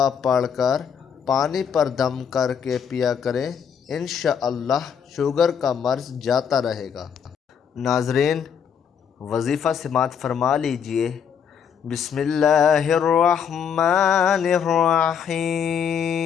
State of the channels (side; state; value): right; quieter; 7.5 dB